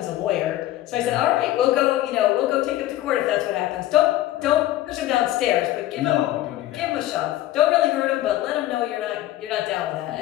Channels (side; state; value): right; quieter; 14.6 dB